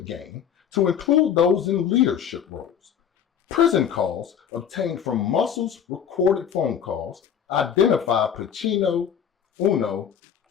Gang to include those in leadership roles. Prison calls obtained from Muscle's recorded phone calls identify Pacino, Uno,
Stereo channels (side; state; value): right; quieter; 8.3 dB